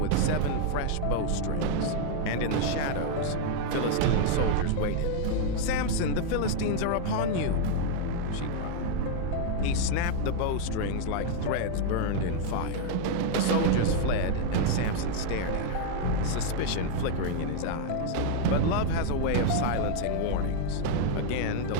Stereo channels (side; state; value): both; different; correlation 0.00